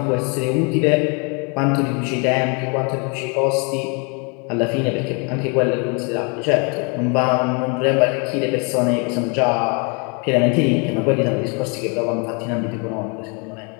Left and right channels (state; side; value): quieter; right; 33.8 dB